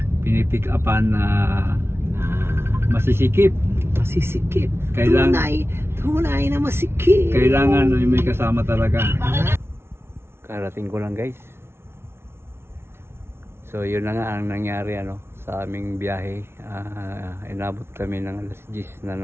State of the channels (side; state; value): left; late; 0.12 ms